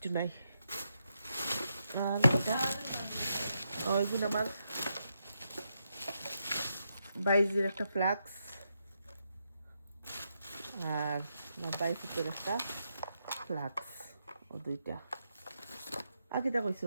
নাই। আর এটা এগুলো আমার বাইজের একটা ফ্লাক্স আর আমার বাইফুটের একটা ফ্লাক্স ও দুইটা। আর কিটা কইছ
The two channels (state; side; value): inverted; both; correlation -0.83